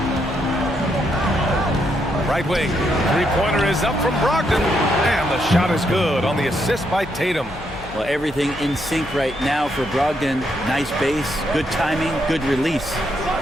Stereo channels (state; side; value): noise; left; hum, 18 dB below the sound